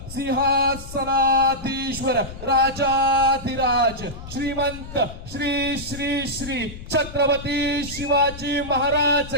सिंहासनाधीश्वर राजाधिराज श्रीमंत श्री श्री श्री छत्रपती शिवाजी महाराज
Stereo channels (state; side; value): noise; left; rumble, 13 dB below the sound